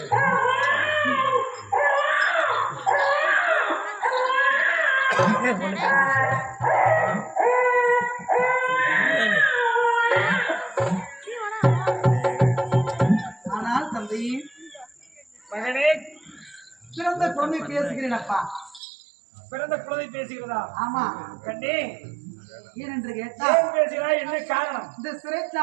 ஆனால் தந்தை மகனே பிறந்த குழந்தை பேசுகிறேன் அப்பா. பிறந்த குழந்தை பேசுகிறதா ஆமா, கண்ணே ஏனென்று கேட்டால் ஏன் பேசுகிறாய் என்ன காரணம் இந்த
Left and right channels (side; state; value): left; drops out; at 18.8 s